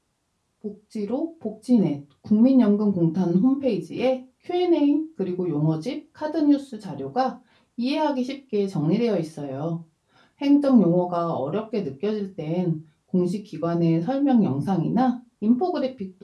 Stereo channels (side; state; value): both; identical; correlation 1.00